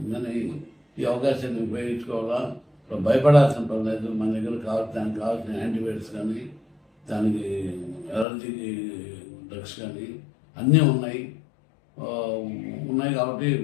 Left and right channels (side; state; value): right; drops out; at 8.2 s